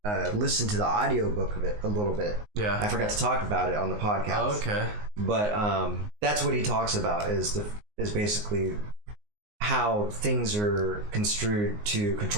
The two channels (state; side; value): late; left; 19 ms